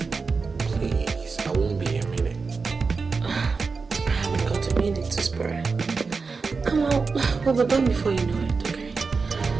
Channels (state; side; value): quieter; left; 4.6 dB